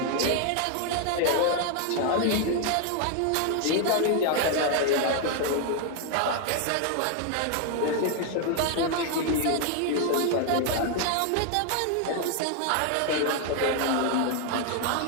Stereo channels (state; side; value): different; both; correlation 0.00